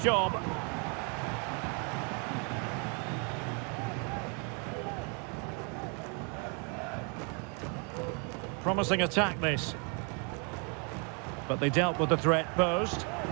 job. Promising attack this. But they dealt with the threat posed.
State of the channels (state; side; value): quieter; left; 36.3 dB